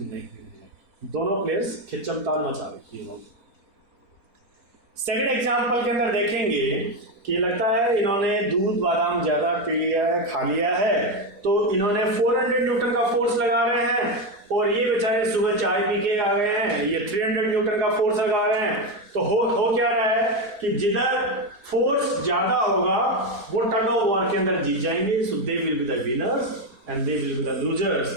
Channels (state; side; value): late; left; 4.4 ms